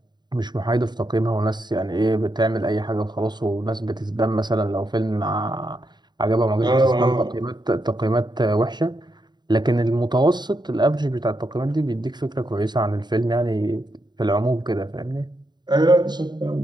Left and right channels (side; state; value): left; late; 0.21 ms